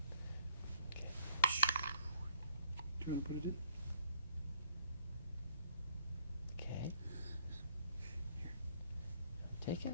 Okay. Do you want to put it in? Okay. Here. Take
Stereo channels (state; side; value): inverted; both; correlation -0.63